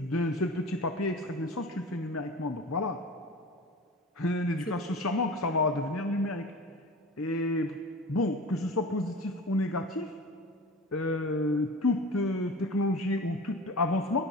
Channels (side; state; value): both; normal; correlation 0.35